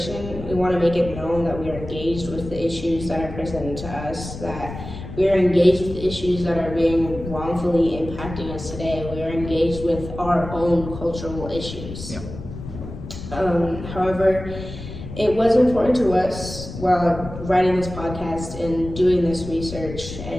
we want to make it known that we are engaged with the issues that are presented to us, that we are engaged with the issues that are being wrongfully impacting us today. We are engaged with our own cultural issues. Yeah. However, it was important to us while writing this podcast and doing this research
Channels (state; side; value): noise; left; rumble, 10 dB below the sound